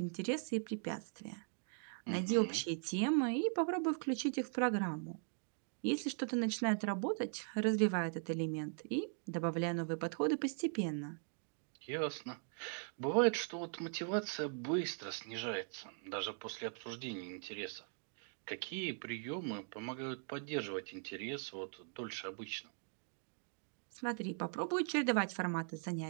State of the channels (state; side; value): silent; left; 51 dB below the other